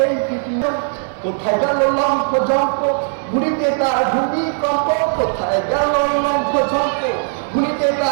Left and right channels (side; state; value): left; silent; digital silence